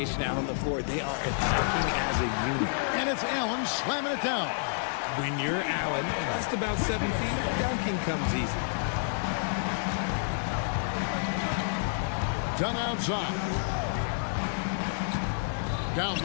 out on the floor. They are attacking as a unit. And it's Allen slamming it down. When you're Allen, just about 7 feet, dunking comes easy. Done outside. Down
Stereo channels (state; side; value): silent; right; digital silence